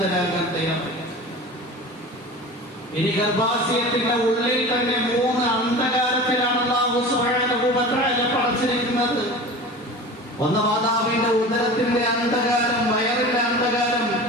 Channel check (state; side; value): normal; both; correlation 0.35